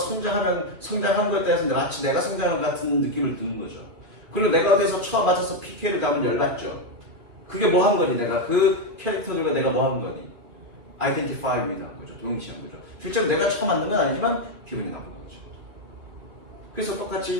것에 대해서 마치 내가 성장하는 것 같은 느낌을 드는 거죠. 그리고 내가 어디서 처음 맞아서 PK를 가면 열받죠. 그게 뭐 한 거니? 내가 그 캐릭터들과 내가 뭐 한 거니? 아이덴티파이입니다. 거죠. 동일시한 거죠. 실제로 내가 처음 만든 건 아니지만 기분이 나쁜 거죠. 그래서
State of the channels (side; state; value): left; late; 3.0 ms